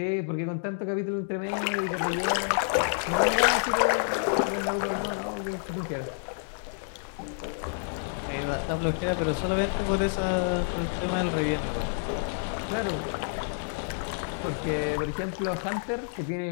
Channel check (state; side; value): silent; right; digital silence